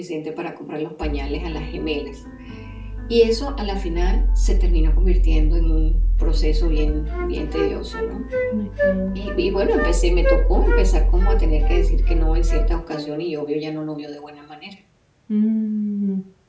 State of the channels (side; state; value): both; identical; correlation 1.00